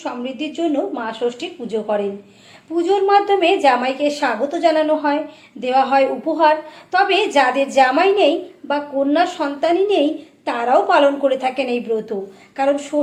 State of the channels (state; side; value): identical; both; correlation 1.00